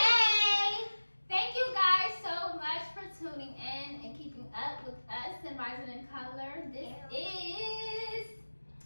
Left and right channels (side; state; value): both; inverted; correlation -1.00